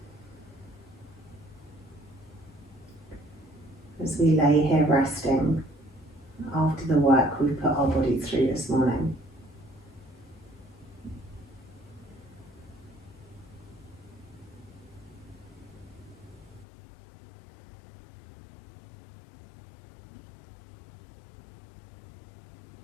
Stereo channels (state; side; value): drops out; right; at 16.7 s